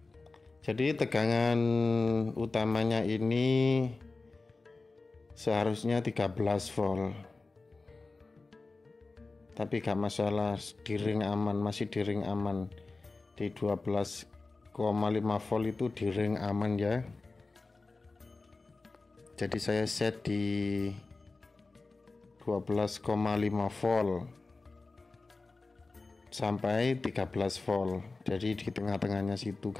Jadi tegangan utamanya ini seharusnya 13 volt. Tapi gak masalah, di ring aman, masih di ring aman. Di 12,5 volt itu di ring aman ya. Jadi saya set di 12,5 volt sampai 13 volt. Jadi di tengah-tengahnya situ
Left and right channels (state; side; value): quieter; right; 3.6 dB